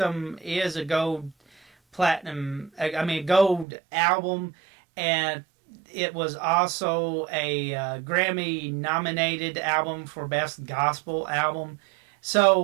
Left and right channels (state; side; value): drops out; left; at 3.7 s